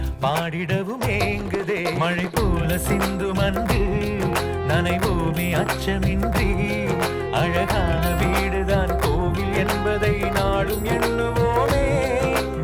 பாடிடவும் ஏங்குதே. மழை போல சிந்தும் அன்று நனைவோமே அச்சமின்றி. அழகான வீடுதான் கோவில் என்பதை நாளும் எண்ணுவோமே.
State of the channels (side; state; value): both; identical; correlation 1.00